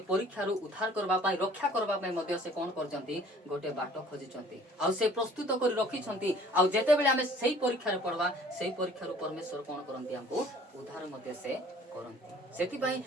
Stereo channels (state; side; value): normal; both; correlation 0.53